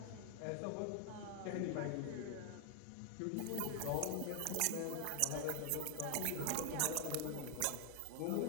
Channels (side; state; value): both; different; correlation 0.00